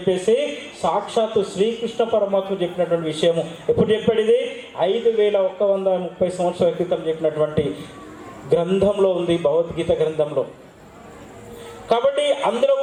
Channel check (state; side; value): identical; both; correlation 1.00